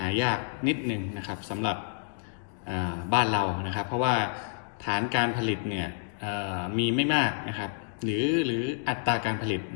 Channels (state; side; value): silent; right; digital silence